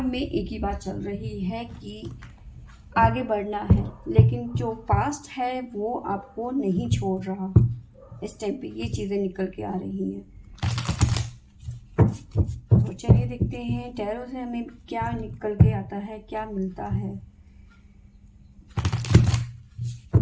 में एक ही बात चल रही है कि आगे बढ़ना है, लेकिन जो पास्ट है वो आपको नहीं छोड़ रहा। इस टाइम पे ये चीज़ें निकल के आ रही हैं। तो चलिए देखते हैं टैरो से हमें क्या निकल के आता है, क्या मिलता है।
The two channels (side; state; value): both; identical; correlation 1.00